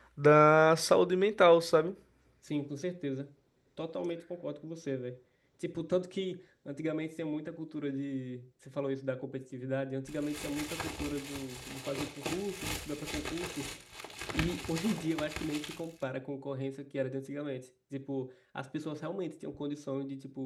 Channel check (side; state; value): both; identical; correlation 1.00